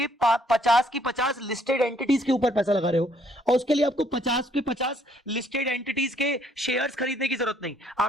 50 की 50 लिस्टेड एंटिटीज के ऊपर पैसा लगा रहे हो, और उसके लिए आपको 50 के 50 लिस्टेड एंटिटीज के शेयर्स खरीदने की जरूरत नहीं.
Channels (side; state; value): both; normal; correlation 0.66